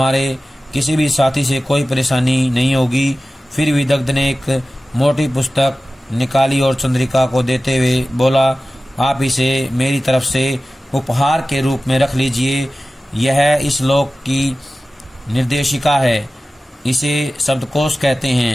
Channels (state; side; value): normal; both; correlation 0.96